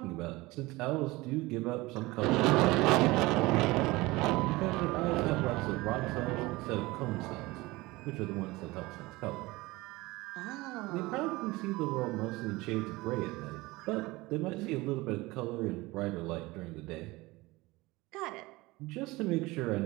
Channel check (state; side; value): quieter; left; 21.1 dB